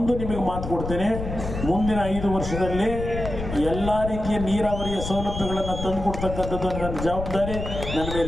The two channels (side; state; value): left; noise; rumble, 6 dB below the sound